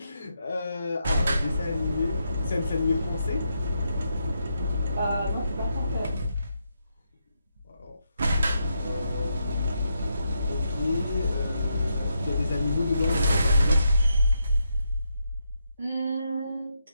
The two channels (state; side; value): inverted; both; correlation -0.82